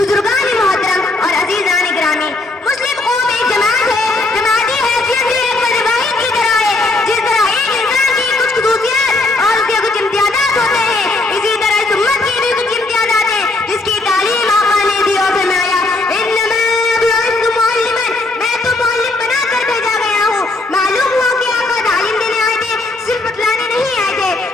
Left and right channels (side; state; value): right; quieter; 3.1 dB